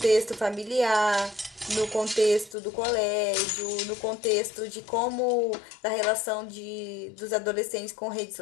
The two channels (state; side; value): drops out; right; at 2.6 s